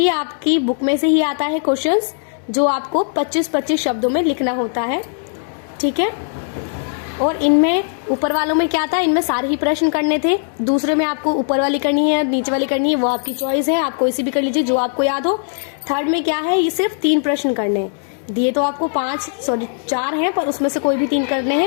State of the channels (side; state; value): right; silent; 64 dB below the other